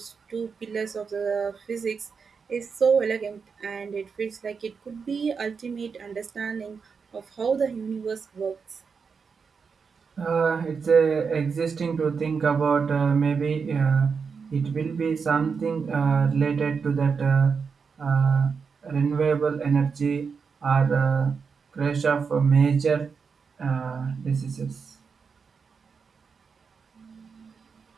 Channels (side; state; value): left; quieter; 5.6 dB